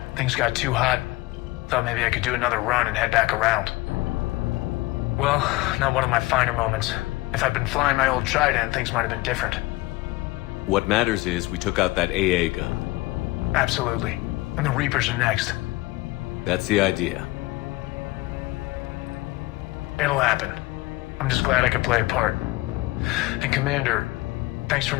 Things got too hot. Thought maybe I could do another run and head back around. Well, not one of my finer moments. If I'd been flying my old Trident, things might have been different. What matters is we took out that AA gun. Absolutely. And the Reapers are next. That's the idea. It'll happen. I'm just glad I could play a part. And Commander, thanks for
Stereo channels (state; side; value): quieter; right; 20.6 dB